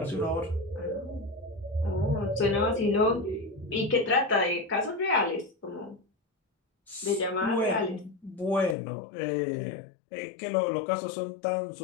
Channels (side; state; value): right; drops out; at 8.8 s